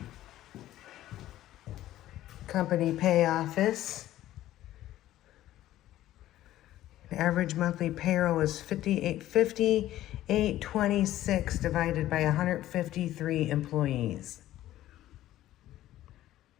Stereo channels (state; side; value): quieter; right; 14.0 dB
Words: Company pay office. The average monthly payroll was $58.26 divided by 153 employees.